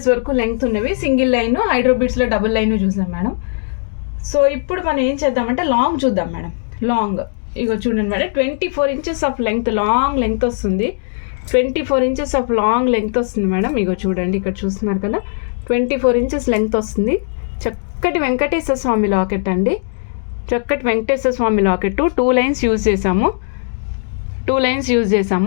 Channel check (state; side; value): silent; right; digital silence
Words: వరకు లెంగ్త్ ఉన్నవి, సింగిల్ లైన్, హైడ్రోబిట్స్లో డబుల్ లైన్ చూసాం మేడం. సో ఇప్పుడు మనం ఏం చేద్దామంటే లాంగ్ చూద్దాం మేడం. లాంగ్ ఇగో చూడండి madam, 24 inches of length, long length వస్తుంది. 24 ఇంచెస్ ఆఫ్ లాంగ్ లెంగ్త్ వస్తుంది మేడం. ఇగో చూడండి ఇక్కడ చూస్తున్నారు కదా, 24 ఇంచెస్ లెంగ్త్ వస్తుంది. చక్కటి వెంకటేశ్వర స్వామి లాకెట్ అండి. చక్కటి వెంకటేశ్వర స్వామి లాకెట్. 2 లైన్స్ యూజ్